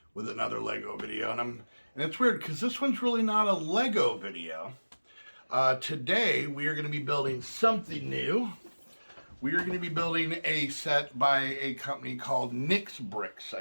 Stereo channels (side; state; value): both; inverted; correlation -1.00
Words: with another Lego video, and it's weird because this one's really not a Lego video. Today we are going to be building something new. We are going to be building a set by a company called Nick's Bricks,